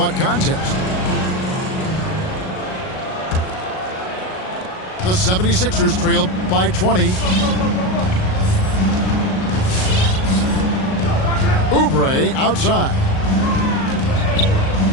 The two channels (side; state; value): right; late; 38 ms